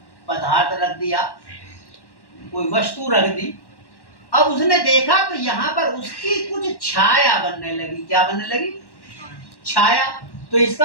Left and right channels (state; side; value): late; right; 1.1 ms